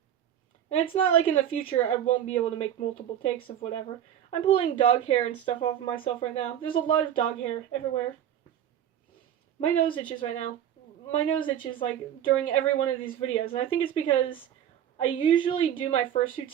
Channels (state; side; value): quieter; left; 10.2 dB